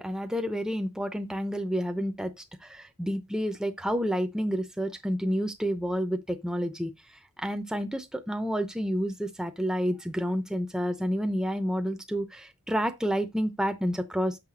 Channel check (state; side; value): normal; both; correlation 0.92